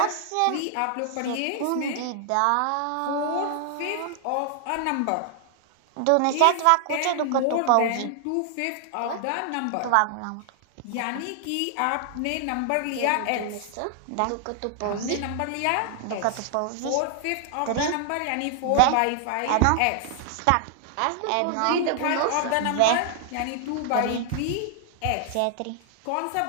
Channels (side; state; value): both; different; correlation 0.00